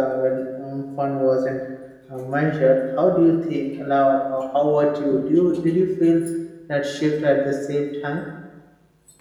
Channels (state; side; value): identical; both; correlation 1.00